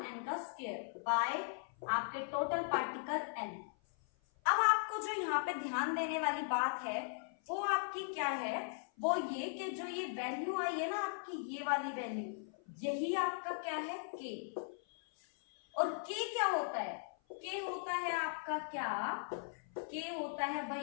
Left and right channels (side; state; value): right; silent; 52 dB below the other